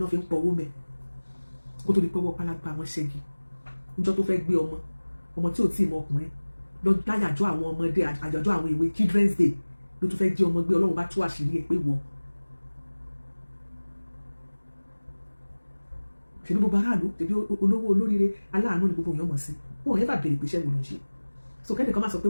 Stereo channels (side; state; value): both; inverted; correlation -1.00